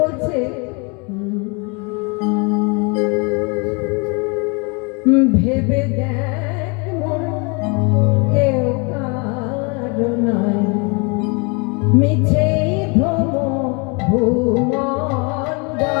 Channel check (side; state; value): right; quieter; 31.8 dB